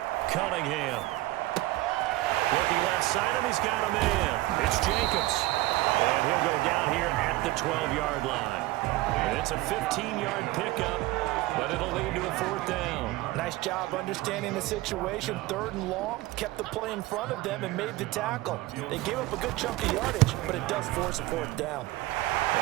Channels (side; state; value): left; quieter; 18.2 dB